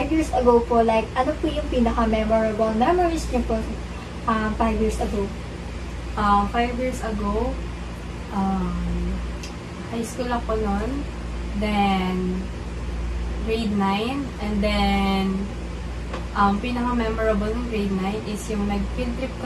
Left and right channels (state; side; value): identical; both; correlation 1.00